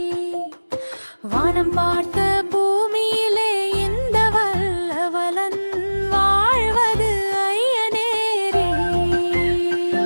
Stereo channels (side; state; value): both; inverted; correlation -1.00